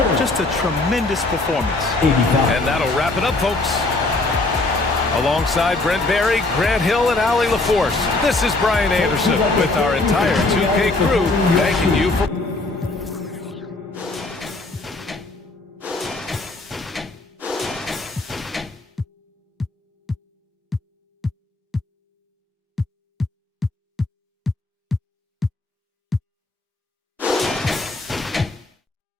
Just a tremendous performance. And that'll wrap it up, folks. Alongside Brent Barry, Grant Hill, and Allie LaForce, this is Brian Anderson with our entire 2K crew thanking you for...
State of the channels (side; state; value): right; quieter; 3.1 dB